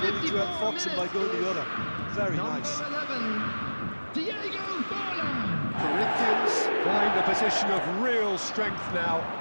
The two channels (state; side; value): inverted; both; correlation -1.00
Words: only to outfox him by going the other. Very nice. Corinthians find a position of real strength now.